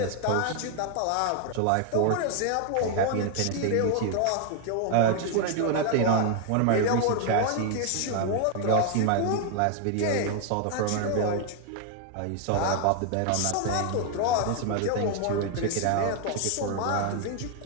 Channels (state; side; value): different; both; correlation 0.00